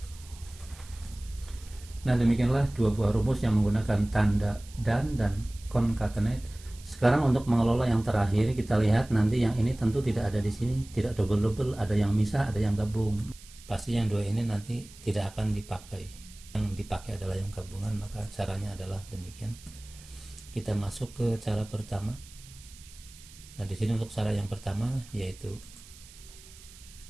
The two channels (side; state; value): right; noise; hiss, 20 dB below the sound